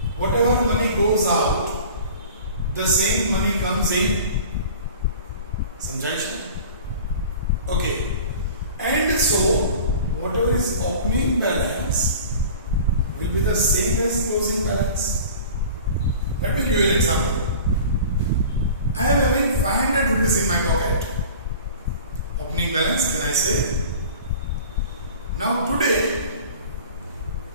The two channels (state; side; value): inverted; both; correlation -0.41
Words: whatever money goes out, the same money comes in? Samjha? Okay. And so, whatever is opening balance will be the same as closing balance. Let me give you an example. I am having 500 rupees in my pocket. Opening balance, can I say? Now today,